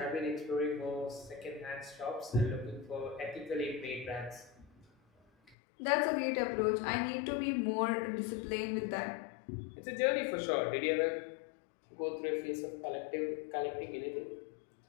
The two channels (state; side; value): drops out; right; at 5.6 s